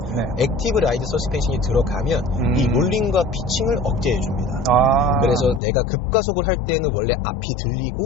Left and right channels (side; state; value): right; drops out; at 5.6 s